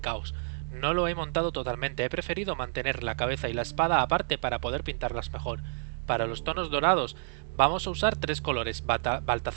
caos. No lo he montado totalmente, he preferido mantener la cabeza y la espada aparte para poder pintarlas mejor. Para los tonos dorados vamos a usar tres colores,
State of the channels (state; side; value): silent; left; digital silence